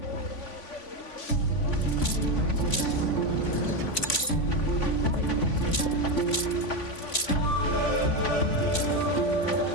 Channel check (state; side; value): late; right; 3.5 ms